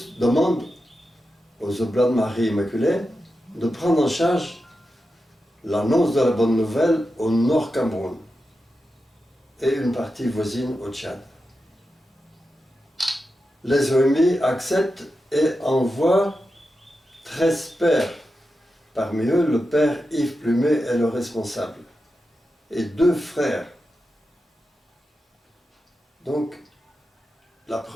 demande aux Oblats de Marie Immaculée de prendre en charge l'annonce de la bonne nouvelle au Nord Cameroun et une partie voisine au Tchad. Les OMI acceptent et envoient 13 pères. Parmi eux, le père Yves Plumet est le responsable et 2 frères. Donc, la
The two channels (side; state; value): both; normal; correlation 0.90